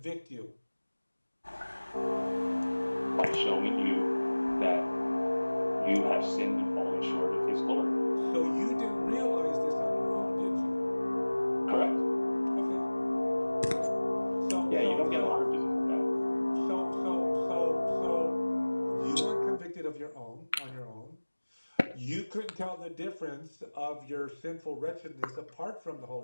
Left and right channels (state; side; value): inverted; both; correlation -1.00